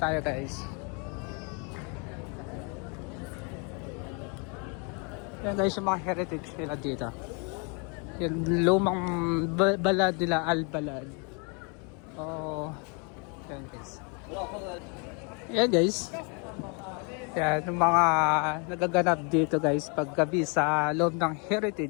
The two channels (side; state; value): right; quieter; 34.9 dB